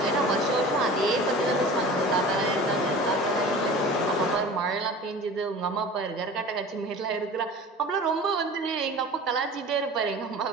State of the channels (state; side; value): normal; both; correlation 0.39